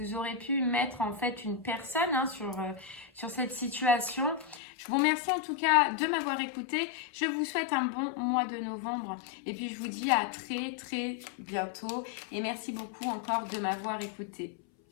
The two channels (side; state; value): right; drops out; at 4.6 s